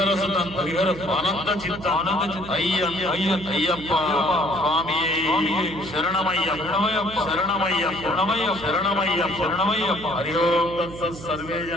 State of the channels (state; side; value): noise; right; hum, 14 dB below the sound